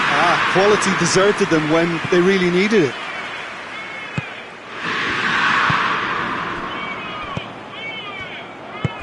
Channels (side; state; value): both; identical; correlation 1.00